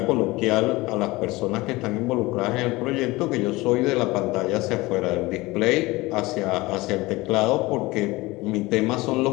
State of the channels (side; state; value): right; quieter; 21.1 dB